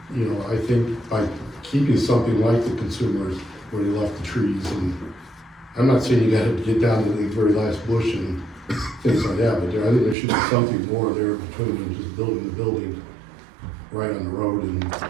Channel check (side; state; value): left; drops out; at 10.2 s